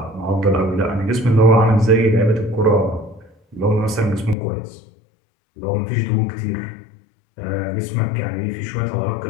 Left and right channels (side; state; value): right; drops out; at 4.4 s